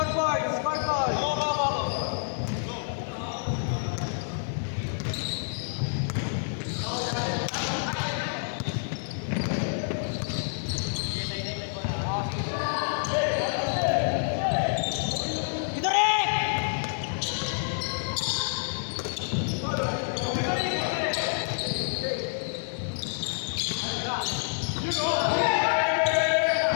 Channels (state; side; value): silent; right; digital silence